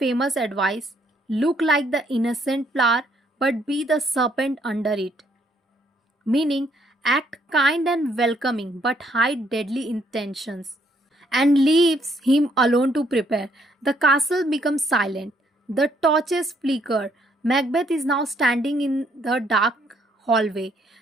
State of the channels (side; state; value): both; normal; correlation 0.69